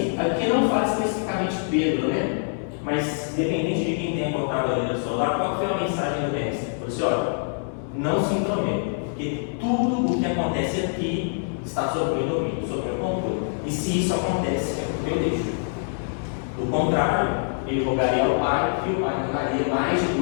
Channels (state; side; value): silent; right; 62 dB below the other